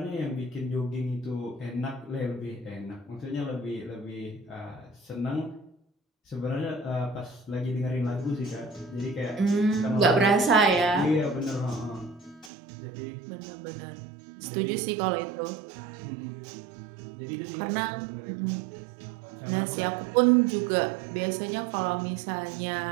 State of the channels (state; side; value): drops out; left; at 12.5 s